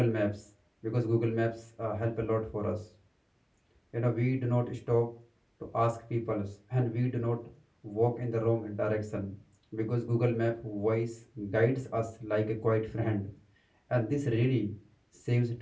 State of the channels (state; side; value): identical; both; correlation 1.00